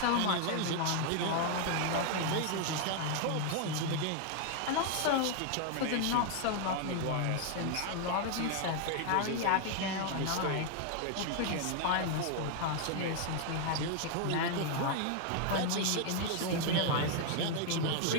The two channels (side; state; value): both; different; correlation 0.00